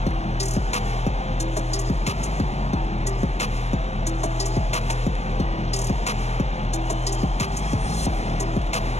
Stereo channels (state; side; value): late; right; 0.31 ms